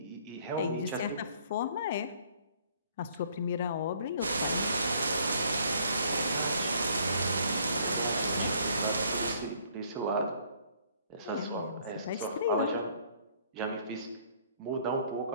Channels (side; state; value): both; inverted; correlation -0.62